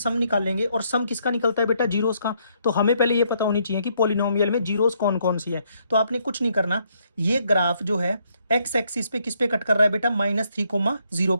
निकाल लेंगे, और सम किसका निकलता है बेटा? जीरोस का। तो हमें पहले ये पता होनी चाहिए कि पॉलिनोमियल में जीरोस कौन कौन सी है। तो आपने कुछ नहीं करना, ये ग्राफ जो है एक्स एक्सिस पे किस पे कट कर रहा है बेटा? -3,0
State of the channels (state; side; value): inverted; both; correlation -0.72